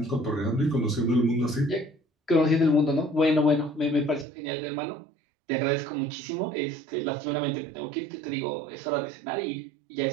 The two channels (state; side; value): drops out; left; at 4.2 s